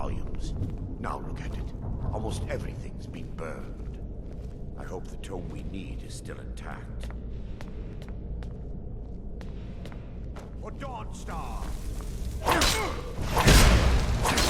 Now look at it. Almost everything's been burned. I hope the tome we need is still intact. For Dawnstar!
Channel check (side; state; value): both; identical; correlation 1.00